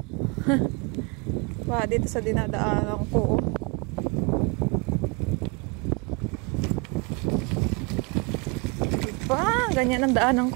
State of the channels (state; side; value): quieter; left; 31.0 dB